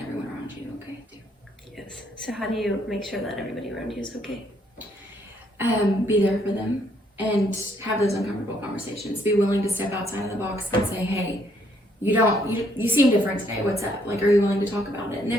everyone around you okay too. So how do you make sure that everybody around you is okay? Be there for them and have those uncomfortable conversations. Be willing to step outside of the box and say, hey, you seem different today. What's up? Like, are you willing to talk about it? And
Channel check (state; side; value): normal; both; correlation 0.69